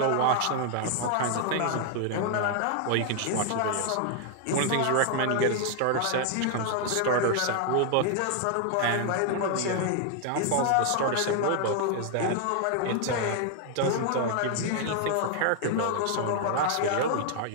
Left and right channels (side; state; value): both; different; correlation 0.00